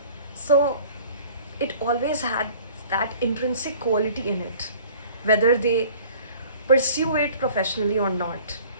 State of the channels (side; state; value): both; inverted; correlation -0.49